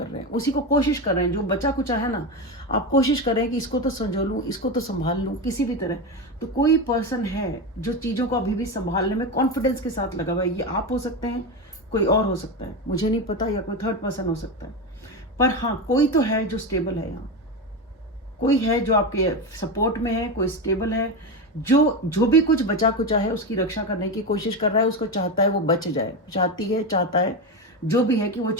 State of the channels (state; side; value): normal; both; correlation 0.17